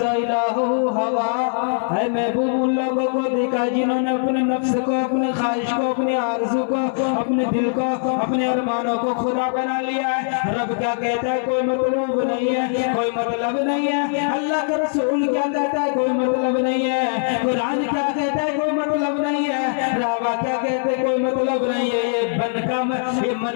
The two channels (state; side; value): silent; right; digital silence